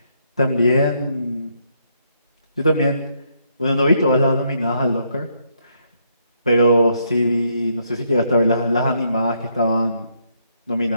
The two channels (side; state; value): both; inverted; correlation -0.74